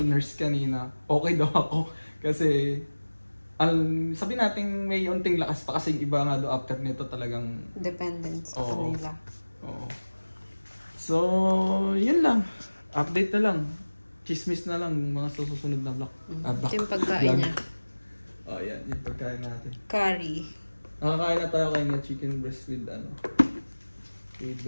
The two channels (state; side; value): inverted; both; correlation -1.00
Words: nurse kanina, okay daw ako. Kasi sabi natin may unting lakas pa kasi iba nga do after nito talagang Dependent sa Oo. kanila. Oo. So, yun lang. Update na lang. Chismis na lang mga susunod na vlog. Ito yung pagkain niya. Yan. Yung pagkain natin. Curry. Nakakain na tayo kayo ng chicken breast with